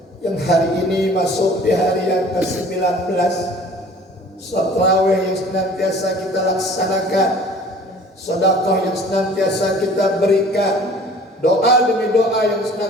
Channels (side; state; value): both; normal; correlation 0.49